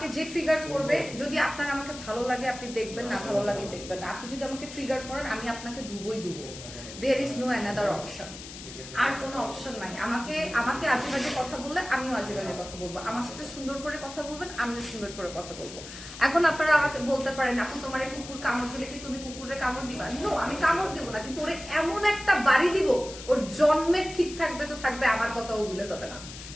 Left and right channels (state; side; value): noise; left; hiss, 13 dB below the sound